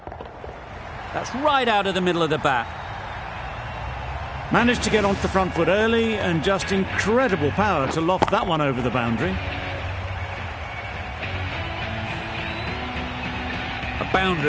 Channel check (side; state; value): both; identical; correlation 1.00